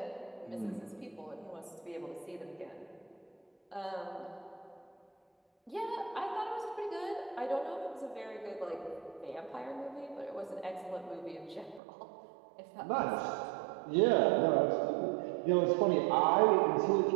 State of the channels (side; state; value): left; drops out; at 11.8 s